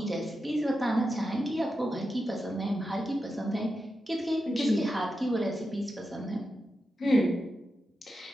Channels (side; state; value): both; normal; correlation 0.89